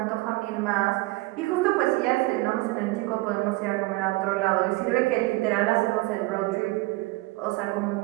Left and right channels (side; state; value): left; quieter; 21.4 dB